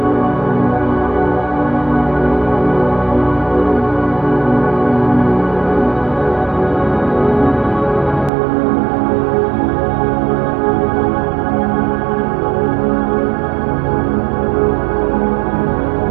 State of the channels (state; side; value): drops out; left; at 8.3 s